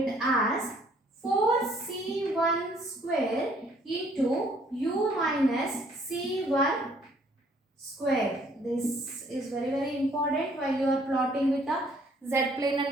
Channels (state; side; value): normal; both; correlation 0.62